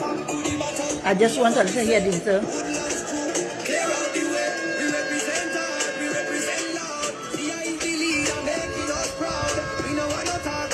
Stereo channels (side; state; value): both; identical; correlation 1.00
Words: I just want to hear this though.